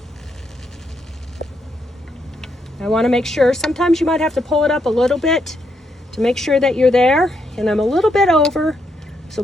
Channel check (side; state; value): both; normal; correlation 0.78